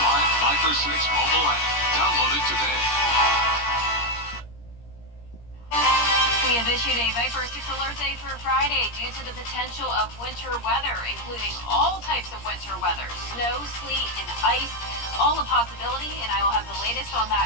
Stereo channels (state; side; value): late; right; 17 ms